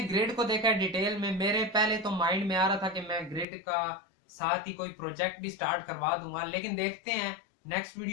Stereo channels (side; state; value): right; drops out; at 3.5 s